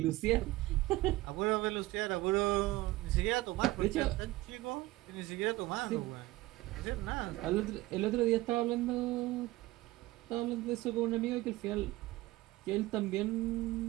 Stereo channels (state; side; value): quieter; left; 18.2 dB